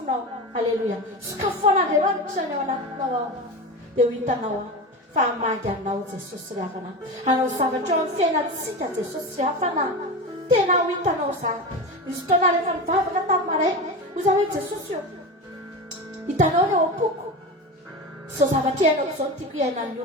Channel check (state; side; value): normal; both; correlation 0.24